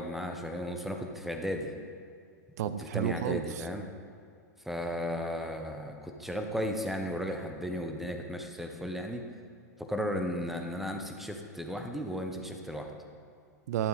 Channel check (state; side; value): normal; both; correlation 0.37